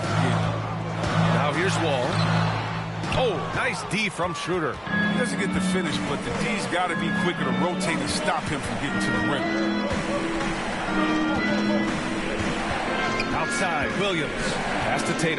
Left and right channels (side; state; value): both; identical; correlation 1.00